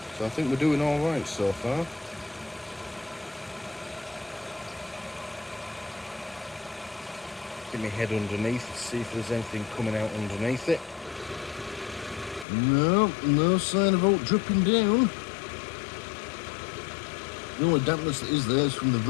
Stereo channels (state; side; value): drops out; right; at 12.5 s